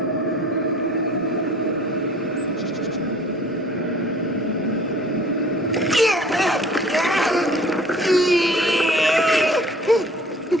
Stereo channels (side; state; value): both; normal; correlation 0.49